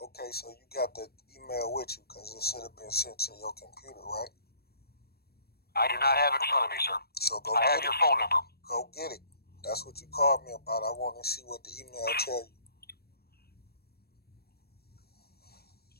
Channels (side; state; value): right; late; 0.46 ms